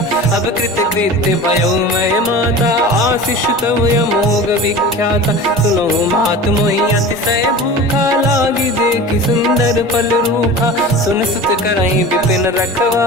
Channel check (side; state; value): both; normal; correlation 0.35